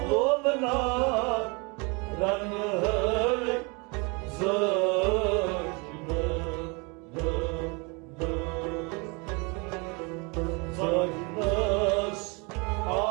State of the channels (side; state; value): left; quieter; 30.5 dB